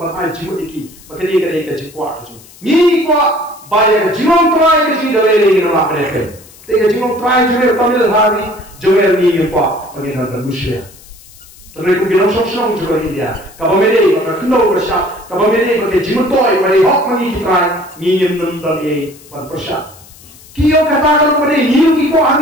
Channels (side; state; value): left; noise; hiss, 23 dB below the sound